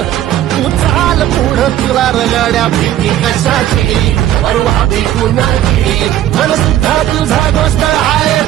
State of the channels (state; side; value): quieter; left; 12.4 dB